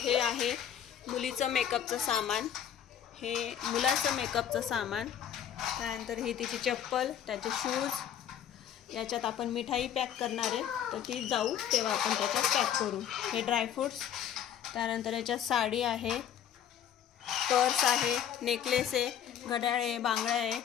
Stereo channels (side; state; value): right; quieter; 9.6 dB